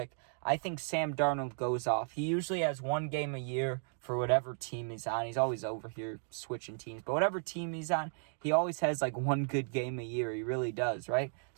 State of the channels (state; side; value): silent; left; 55 dB below the other